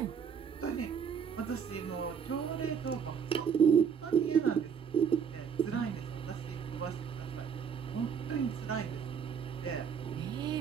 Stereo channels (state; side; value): quieter; left; 7.1 dB